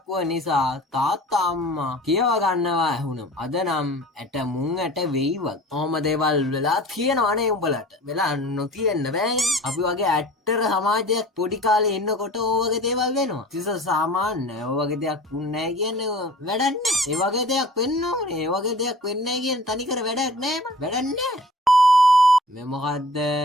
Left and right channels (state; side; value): normal; both; correlation 0.44